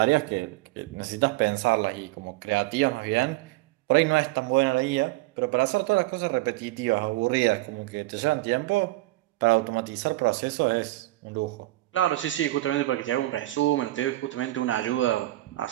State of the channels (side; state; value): left; quieter; 18.0 dB